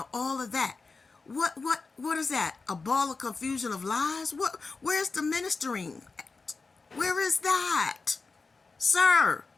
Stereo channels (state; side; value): quieter; right; 4.2 dB